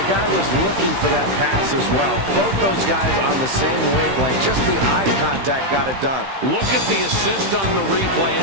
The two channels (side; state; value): left; late; 15 ms